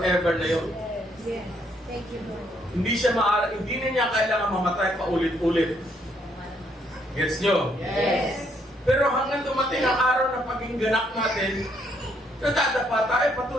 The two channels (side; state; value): both; normal; correlation 0.71